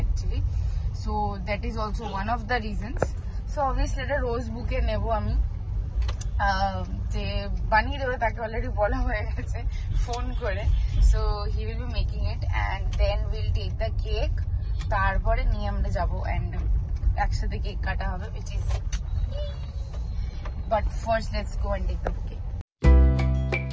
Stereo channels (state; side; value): identical; both; correlation 1.00